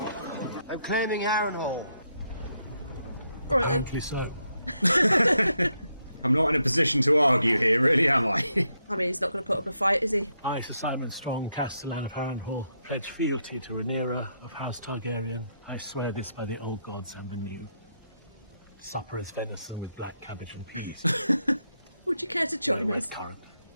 I'm claiming Harrenhal. Right then. Aptly so. I'm not in a position to argue here, really, am I? I mean, he's not going to put up a fight, is he? I, Sir Simon Strong, Castellan of Harrenhal, pledge fealty to Rhaenyra of House Targaryen. I swear this by the old gods and the new. Supper is venison with black cabbage and peas. Would you care to join us? Current.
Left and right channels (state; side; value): inverted; both; correlation -0.80